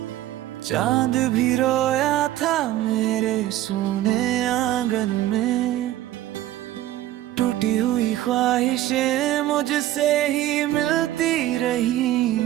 चांद भी रोया था मेरे सोने आंगन में, टूटी हुई ख्वाहिशें मुझसे ही मिलती रही।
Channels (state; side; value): quieter; left; 14.1 dB